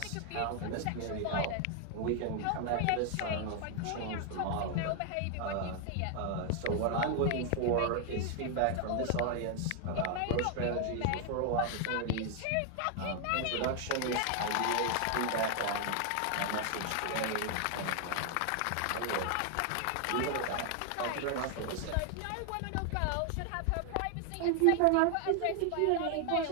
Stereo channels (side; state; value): both; different; correlation 0.00